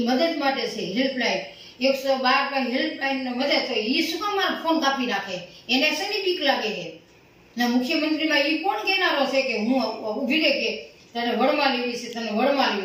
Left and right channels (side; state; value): both; identical; correlation 1.00